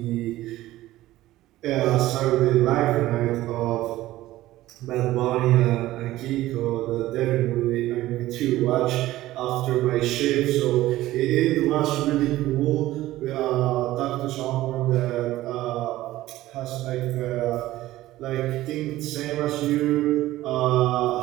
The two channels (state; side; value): quieter; left; 15.9 dB